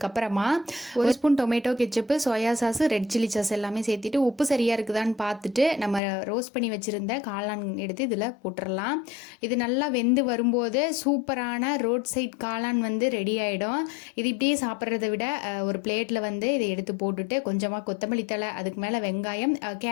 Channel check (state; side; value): drops out; right; at 6.0 s